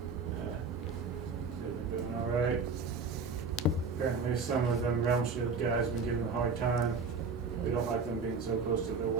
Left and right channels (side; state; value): left; quieter; 4.6 dB